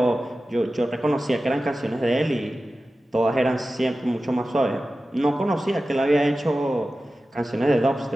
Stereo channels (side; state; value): both; normal; correlation 0.95